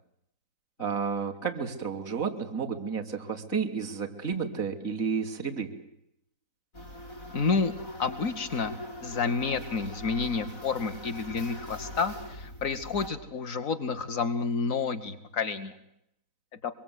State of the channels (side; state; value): right; late; 3.9 ms